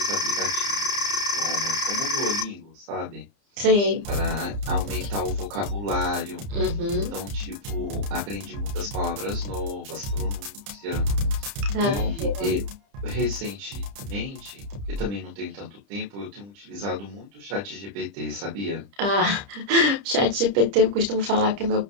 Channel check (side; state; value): left; late; 30 ms